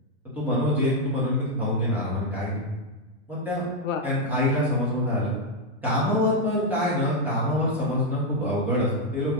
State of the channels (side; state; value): both; normal; correlation 0.01